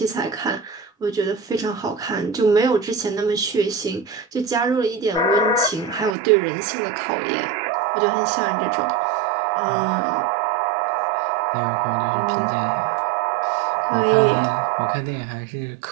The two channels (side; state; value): left; drops out; at 6.2 s